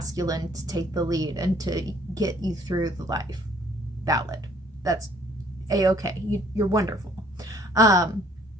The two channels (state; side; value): normal; both; correlation 0.60